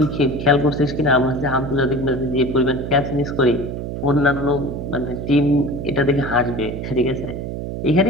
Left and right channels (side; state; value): right; noise; hum, 6 dB below the sound